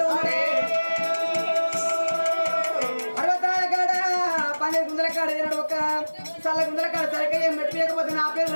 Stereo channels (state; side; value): inverted; both; correlation -1.00